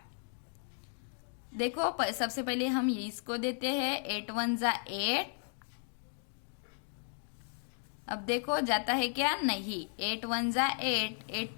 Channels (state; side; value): silent; right; 54 dB below the other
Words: देखो सबसे पहले हम ये इसको देते हैं, 8 1 जा 8। अब देखो जाता है क्या, नहीं, 8 1 जा 8, 8